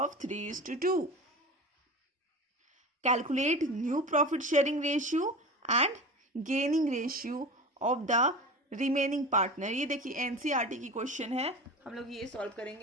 3:2. Calculate new profit sharing ratio and gaining ratio of the remaining partner. ये देखिए NCERT की question है, हम लोग ये solve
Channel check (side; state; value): both; normal; correlation 0.32